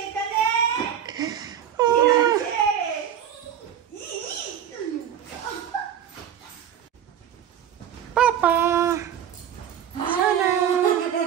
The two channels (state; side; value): quieter; left; 9.5 dB